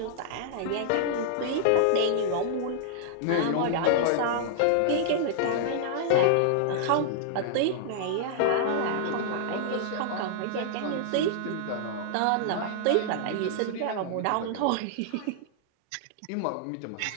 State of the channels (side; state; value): both; different; correlation -0.01